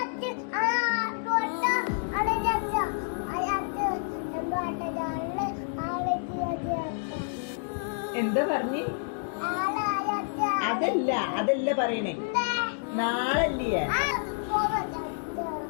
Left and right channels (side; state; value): right; silent; digital silence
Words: എന്താ പറഞ്ഞ്? അതല്ല പറയണേ, നാളല്ലേ?